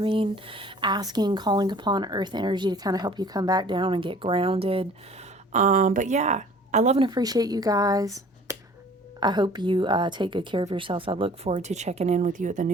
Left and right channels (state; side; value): normal; both; correlation 0.51